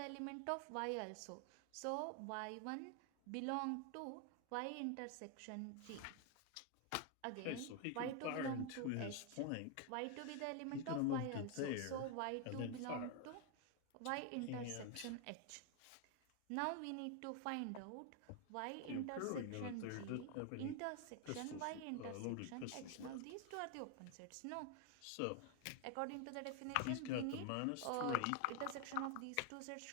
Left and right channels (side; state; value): both; different; correlation 0.01